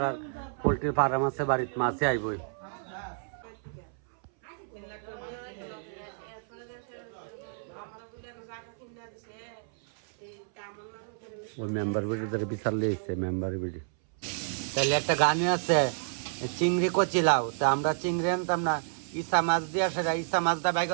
পোলট্রির ফার্ম আছে বাড়িতে, মাছে আইবই। ওই মেম্বার বিডি ধরে বিশাল লিয়েছে মেম্বার বিডি। তাহলে একটা গানই আছে, চিংড়ি কচিলাও। তা আমরা চিংড়ি আনতাম না, ইসা মাছ দিয়া, সেটা ইসা মাছ দা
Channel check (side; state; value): left; silent; 58 dB below the other